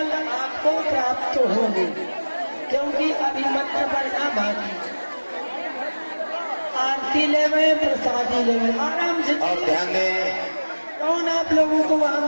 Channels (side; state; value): both; inverted; correlation -1.00